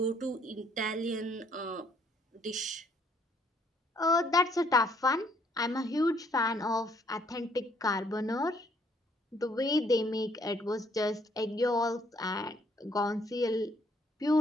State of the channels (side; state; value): both; normal; correlation 0.66